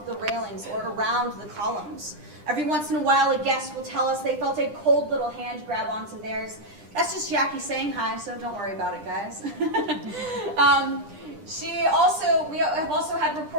the railings or around the columns. Every once in a while, a guest will tell us they felt a cold little hand grab onto theirs. That's just Jackie saying hi, so don't worry about it, guys. We have also had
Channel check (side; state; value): left; late; 9.9 ms